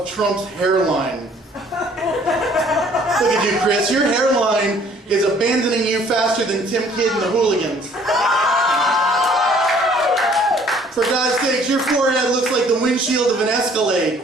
Trump's hairline. Look at you, Chris. Your hairline is abandoning you faster than Tim Kidd and the Hooligans. For God's sakes, your forehead looks like the windshield of an Escalade.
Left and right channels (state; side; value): normal; both; correlation 0.58